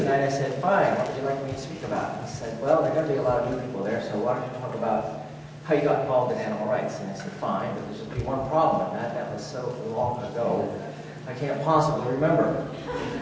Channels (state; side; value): identical; both; correlation 1.00